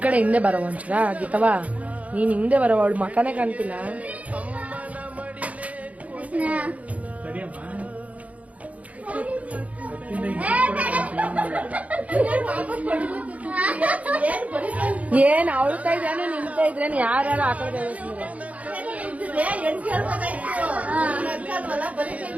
ಕಡೆ ಹಿಂದೆ ಬರವ ಒಂಚೂರ ಗೀತವಾ, ನೀನ್ ಹಿಂದೆ ಬರವ, ಅವಳು ಮಕನೇ ಕಾಣ್ತಿಲ್ಲ. ಏನ್ ಅವಳ್ತಾ ಇದ್ರೇನು ನಿಂತಾ ಇದ್ರೇನು ಯಾರು ಆ ಕಡೆ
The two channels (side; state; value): left; late; 0.068 ms